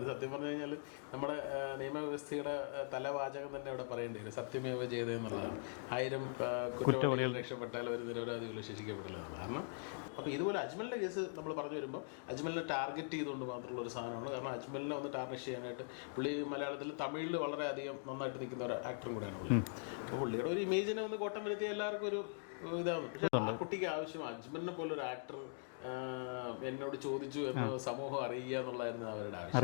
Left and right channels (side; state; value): right; silent; digital silence